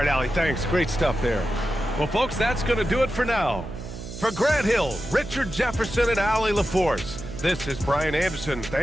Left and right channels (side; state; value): right; noise; hum, 11 dB below the sound